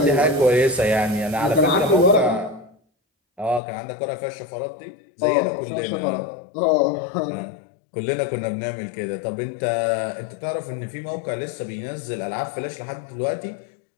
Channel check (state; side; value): drops out; right; at 3.6 s